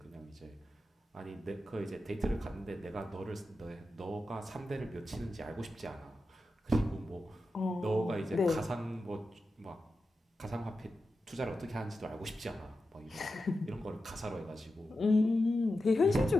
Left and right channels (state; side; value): normal; both; correlation 0.91